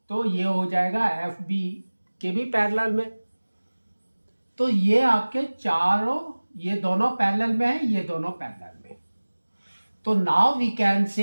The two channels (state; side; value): inverted; both; correlation -1.00